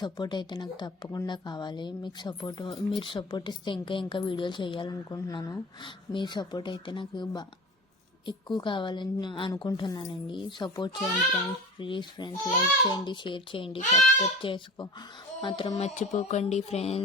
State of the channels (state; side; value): normal; both; correlation 0.36